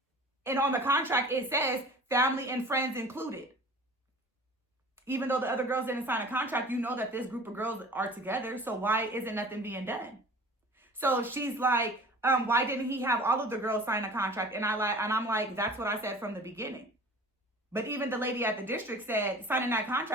And on the contract, it says family and friends included. Even though the other girls didn't sign a contract, you know that this group of girls are together. So why isn't nothing being done? So she's like, why didn't he have all of the girls sign a contract? And I'm like, that's what I said from the beginning. But even the lady at the district said signing that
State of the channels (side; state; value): both; normal; correlation 0.43